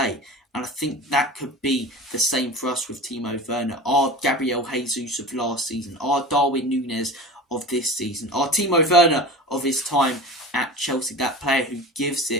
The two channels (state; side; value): normal; both; correlation 0.33